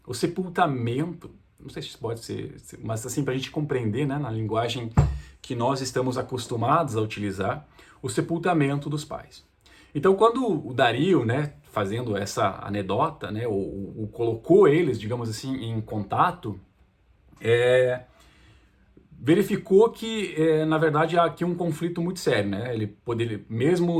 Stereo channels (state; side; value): identical; both; correlation 1.00